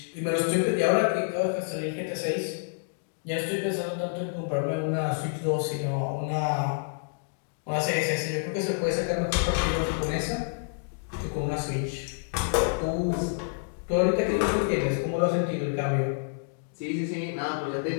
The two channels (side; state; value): right; silent; digital silence